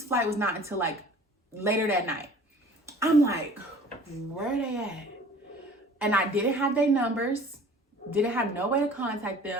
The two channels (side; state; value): both; normal; correlation 0.48